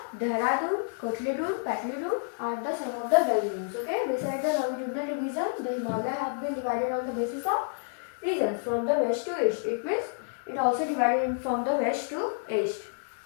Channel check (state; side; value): silent; right; digital silence